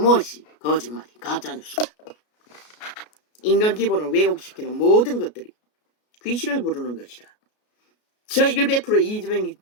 거짓말이 가짜뉴스가. 인간 기본을 왜곡시키는 모든 것들이 귀신을 부르는 것이라. 저 100% 이재명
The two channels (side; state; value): right; late; 33 ms